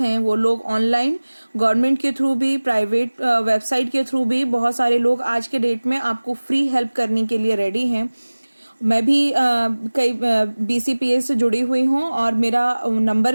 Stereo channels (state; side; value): inverted; both; correlation -1.00